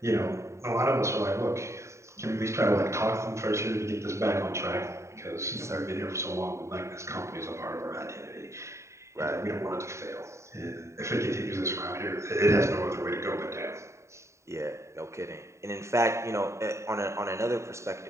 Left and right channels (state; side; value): late; left; 0.14 ms